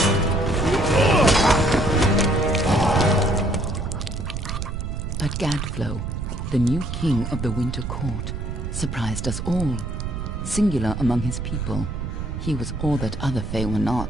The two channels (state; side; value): noise; right; rumble, 5 dB below the sound